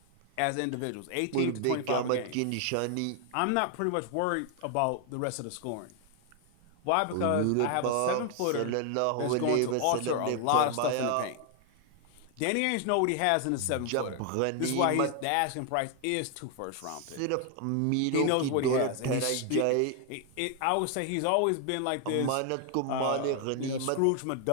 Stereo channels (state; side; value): different; both; correlation 0.00